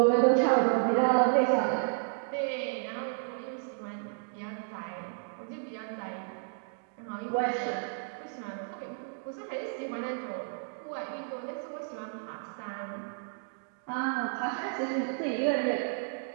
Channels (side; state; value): left; silent; digital silence